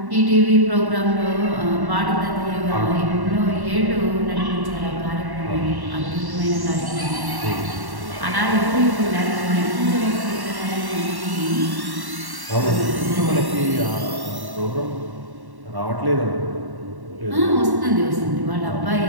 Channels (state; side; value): late; left; 1.1 ms